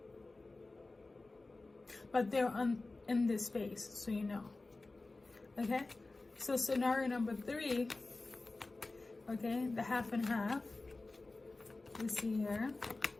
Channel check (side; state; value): right; quieter; 3.3 dB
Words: but they're in this space, so you know. Okay, so scenario number 3, okay, the half and half. Let's see here.